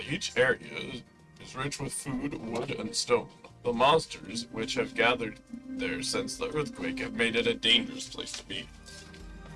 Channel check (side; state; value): both; identical; correlation 1.00